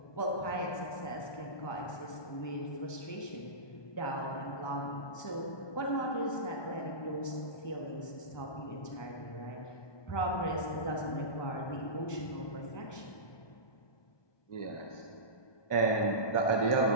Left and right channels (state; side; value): late; right; 1.2 ms